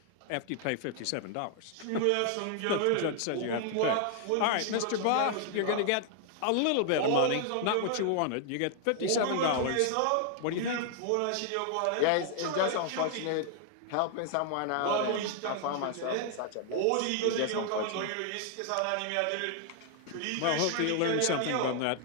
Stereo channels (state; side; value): different; both; correlation 0.00